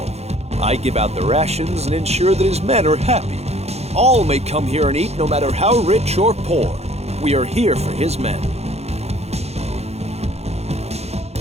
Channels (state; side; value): late; left; 0.31 ms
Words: I give out the rations and ensure that his men are happy. All may come here and eat no matter how rich or poor. We are here for his men.